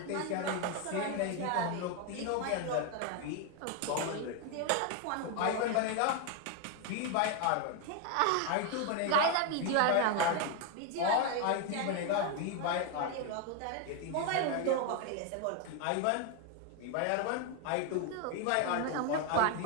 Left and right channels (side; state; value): both; different; correlation 0.01